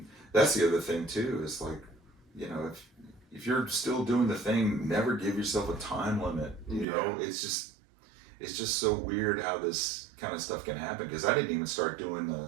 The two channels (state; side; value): drops out; left; at 6.9 s